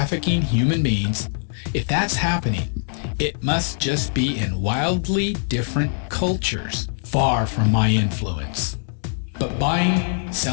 human beings, if that's happening, it must just be in wildly different cultures, far from my influence. But buying,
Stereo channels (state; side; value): silent; right; digital silence